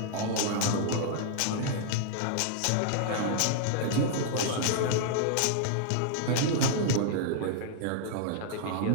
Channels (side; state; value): both; different; correlation -0.01